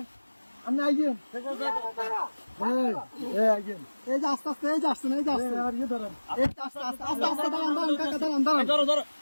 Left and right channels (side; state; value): both; inverted; correlation -1.00